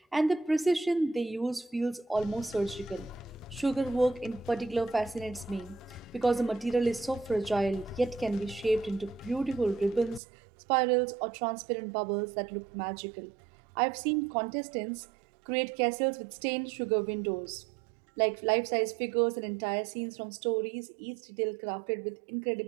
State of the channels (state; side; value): drops out; left; at 10.2 s